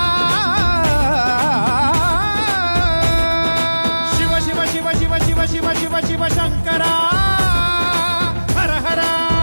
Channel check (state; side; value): inverted; both; correlation -1.00